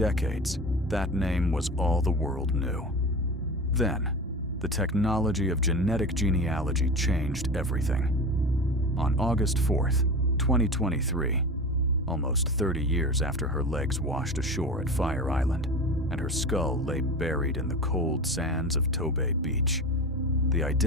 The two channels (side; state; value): both; normal; correlation 0.30